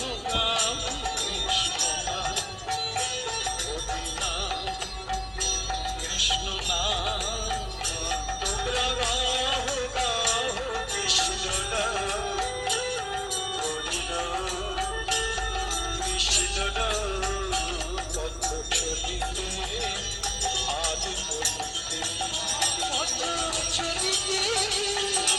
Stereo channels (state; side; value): identical; both; correlation 1.00